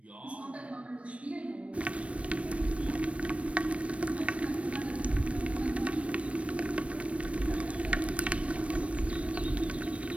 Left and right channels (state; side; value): late; left; 0.063 ms